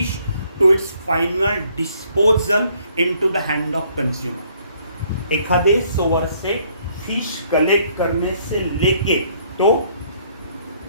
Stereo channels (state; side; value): inverted; both; correlation -0.64